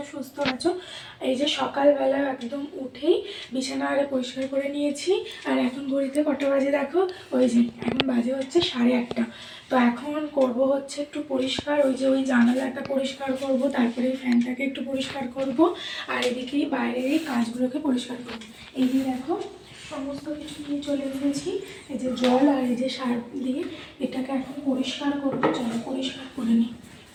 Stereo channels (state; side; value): identical; both; correlation 1.00